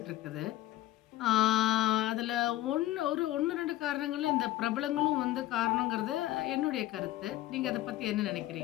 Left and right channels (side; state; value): right; quieter; 15.6 dB